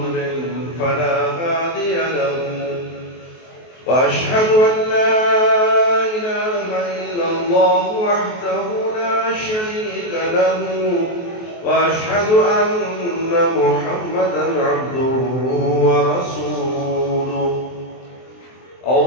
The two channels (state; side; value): late; right; 23 ms